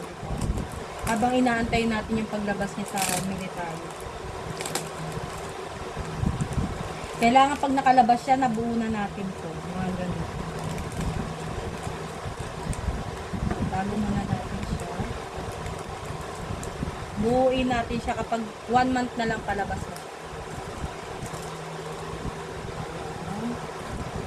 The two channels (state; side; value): identical; both; correlation 1.00